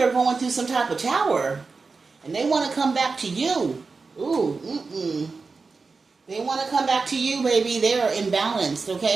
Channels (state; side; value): quieter; left; 4.4 dB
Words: going through some type of tower, and they want to come back to you. Ooh, They want to come back to you, baby. They're imbalanced,